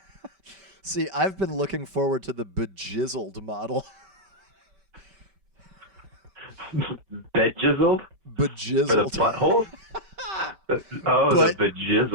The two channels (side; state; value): left; late; 5.2 ms